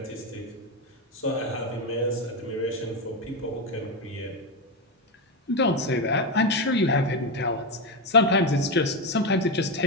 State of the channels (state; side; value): normal; both; correlation 0.11